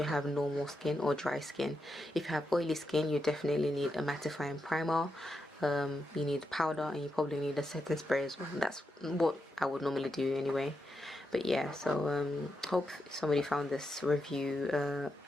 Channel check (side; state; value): both; normal; correlation 0.85